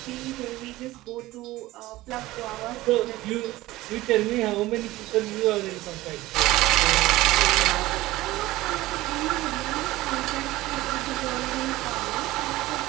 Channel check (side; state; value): left; quieter; 17.8 dB